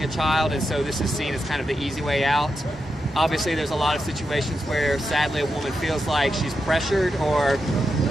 a child, and so this is seen as kind of the easy way out. Obviously, there's a lot of situations where, sadly, a woman feels like she's pressured or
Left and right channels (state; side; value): normal; both; correlation 0.87